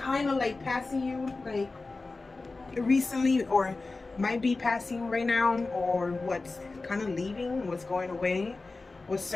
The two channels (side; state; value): right; quieter; 3.6 dB